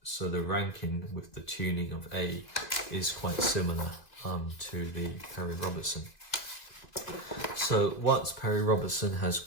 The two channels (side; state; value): right; late; 1.9 ms